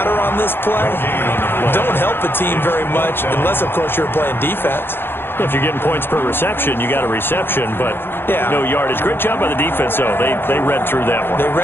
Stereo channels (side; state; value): right; late; 0.10 ms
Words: on this play don't help a team very much unless, of course, you're playing defense. If you're getting points per reception, you got a reception, but yeah, no yardage. Great job by the defense, though. They read through that one. They